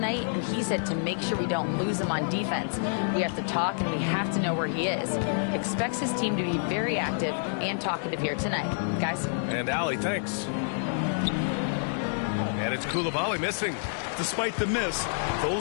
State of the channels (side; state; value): right; silent; digital silence